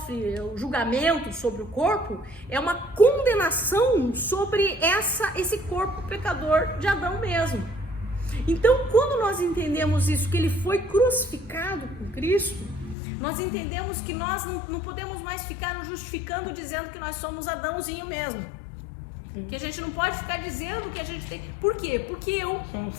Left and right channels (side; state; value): right; drops out; at 13.0 s